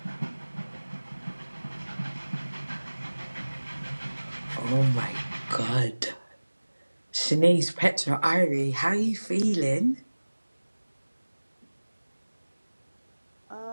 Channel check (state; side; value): inverted; both; correlation -1.00